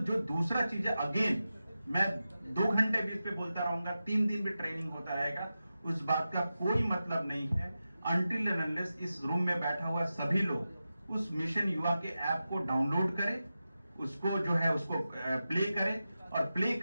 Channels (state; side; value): inverted; both; correlation -0.92